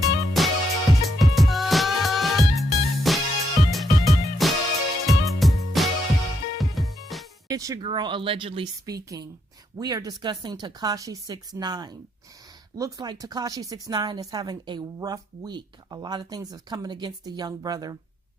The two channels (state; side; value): normal; both; correlation 0.78